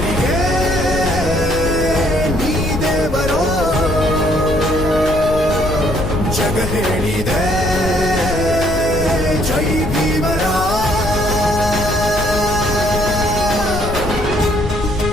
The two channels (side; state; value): left; noise; rumble, 8 dB below the sound